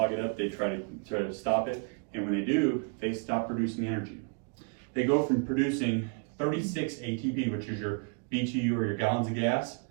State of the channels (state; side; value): quieter; left; 37.1 dB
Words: it up, they try to stop it, and when they do, they stop producing energy. They go from producing 36 ATP, which is your BTU or your gallons of gas,